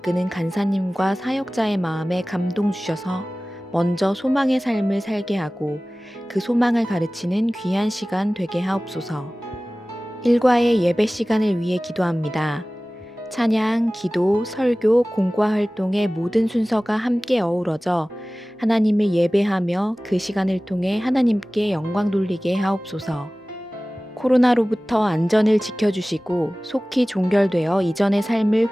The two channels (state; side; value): normal; both; correlation 0.98